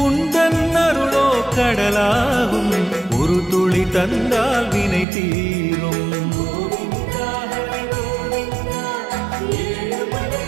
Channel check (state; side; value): drops out; left; at 5.1 s